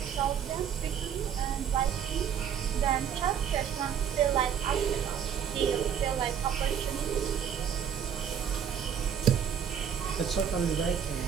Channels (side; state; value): left; quieter; 8.4 dB